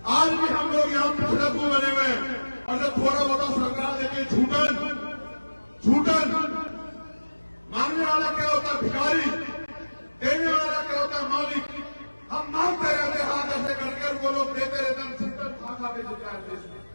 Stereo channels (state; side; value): inverted; both; correlation -1.00